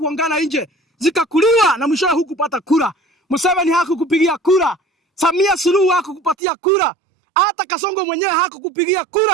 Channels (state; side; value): drops out; left; at 6.4 s